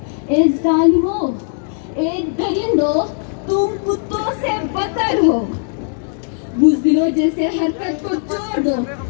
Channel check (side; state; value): right; silent; digital silence